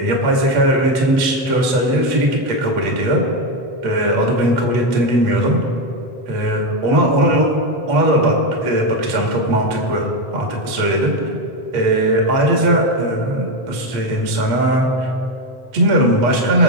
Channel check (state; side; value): late; left; 8.3 ms